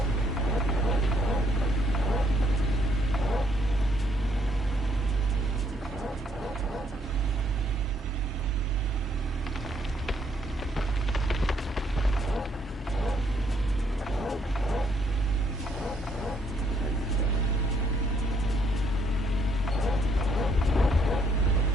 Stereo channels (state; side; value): normal; both; correlation 0.70